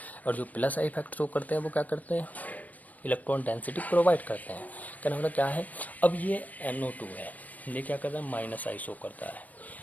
और जो प्लस आई इफेक्ट शो करते हैं वो क्या करते हैं, इलेक्ट्रॉन डेंसिटी प्रोवाइड करते हैं। कहना मतलब क्या है, अब ये NO2 है, ये क्या करता है, माइनस आई शो करता है।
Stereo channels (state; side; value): late; right; 0.076 ms